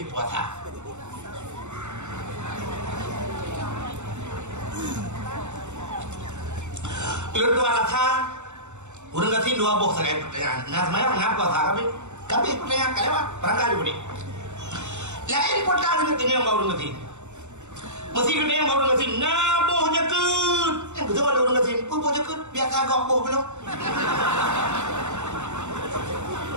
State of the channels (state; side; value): late; left; 0.83 ms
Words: puasa. Lalu alasan, orang kasir dua boh sekali pertanyaan. Nah semuanya kenapa puasa kami pertanyaan kalian berangkat juga ni. Lain pertanyaan dengan bahu dan kasir. Mesti kena yang baru ngasih naboh jakut. Yang betul ada orang kata pun boleh ke biasa agak boh belum